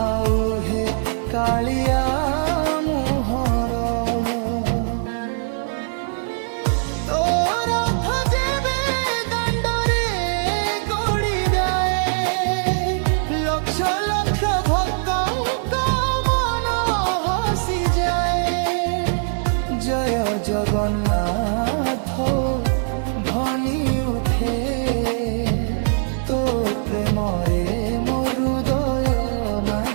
ହେ କାଳିଆ ମୁହଁର। ତୋ ରଥ ଯେବେ ଦାଣ୍ଡରେ ଗଡ଼ିଯାଏ ଲକ୍ଷ ଲକ୍ଷ ଭକ୍ତଙ୍କ ମନ ହସିଯାଏ। ଜୟ ଜଗନ୍ନାଥ ଧ୍ୱନି ଉଠେ ତୋ ପ୍ରେମରେ ମୋ ହୃଦୟ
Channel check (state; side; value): silent; left; digital silence